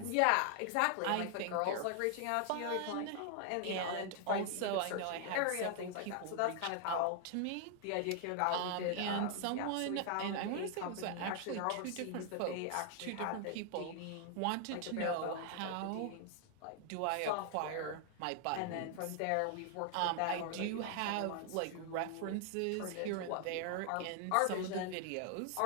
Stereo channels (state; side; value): different; both; correlation 0.00